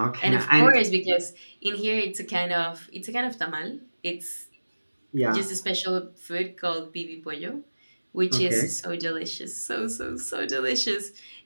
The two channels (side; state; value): both; inverted; correlation -1.00